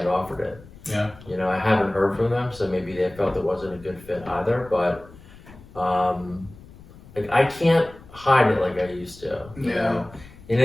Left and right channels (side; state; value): left; noise; rumble, 21 dB below the sound